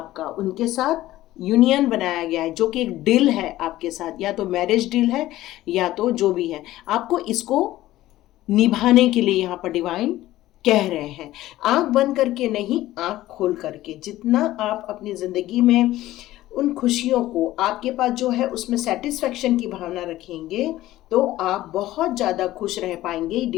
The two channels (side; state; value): right; quieter; 15.5 dB